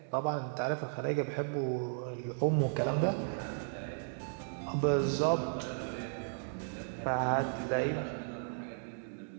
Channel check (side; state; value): left; silent; 54 dB below the other